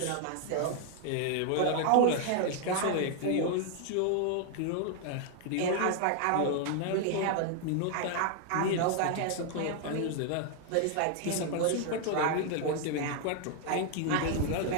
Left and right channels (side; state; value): both; different; correlation 0.00